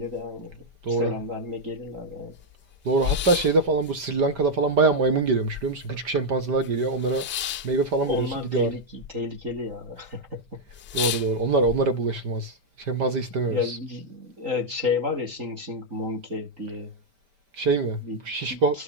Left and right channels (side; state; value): both; normal; correlation -0.02